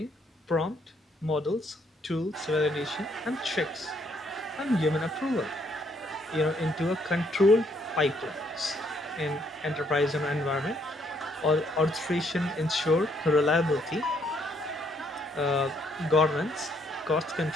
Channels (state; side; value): normal; both; correlation 0.70